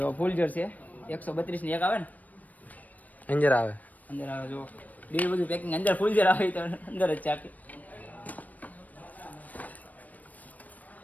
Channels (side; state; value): right; late; 0.077 ms